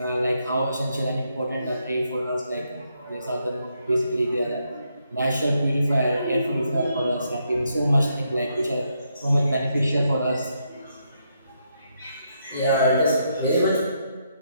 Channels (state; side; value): inverted; both; correlation -0.78